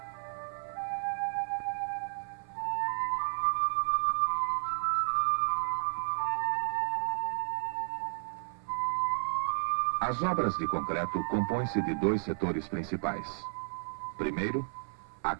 As obras de concreto compõem-se de 2 setores principais. Primeiro, a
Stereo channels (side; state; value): left; silent; 55 dB below the other